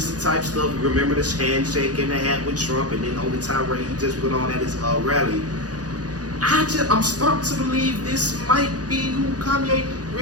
type stuff. Remember the handshake and the hat with Trump, and then on the tirade he just went on at his rally. I'm starting to believe this might be who Kanye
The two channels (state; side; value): late; left; 0.68 ms